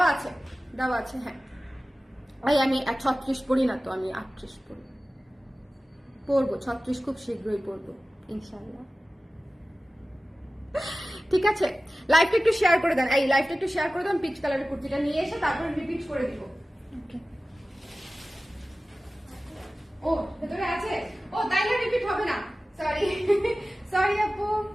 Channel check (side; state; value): both; normal; correlation 0.96